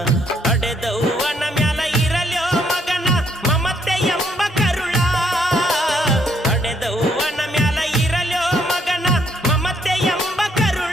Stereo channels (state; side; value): normal; both; correlation 0.70